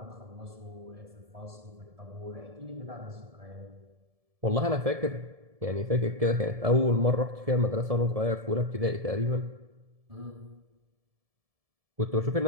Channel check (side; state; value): left; late; 1.7 ms